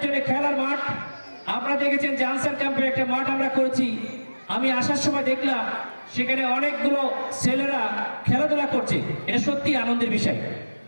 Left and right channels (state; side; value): inverted; both; correlation -1.00